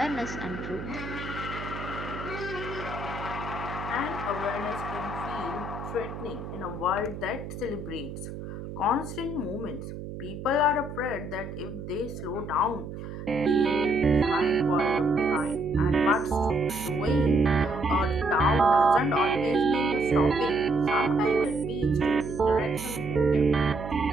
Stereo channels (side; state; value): right; noise; hum, 9 dB below the sound